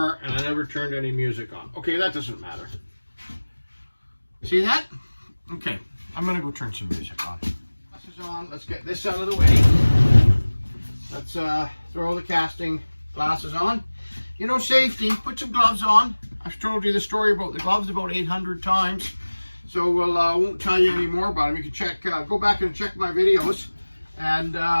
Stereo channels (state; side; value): inverted; both; correlation -1.00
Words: never turned any music on. Okay, that doesn't matter. See that? Okay, I'm gonna go turn some music on. Glasses on, let's get this out of the way. Let's throw the casting glasses on. You know, safety, put some gloves on. I've told you the story about the gloves about 800 times. So we'll, won't tell you any more about them. You can check, go back and check my videos and